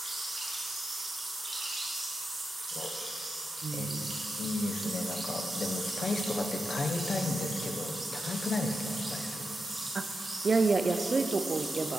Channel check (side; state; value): both; normal; correlation 0.88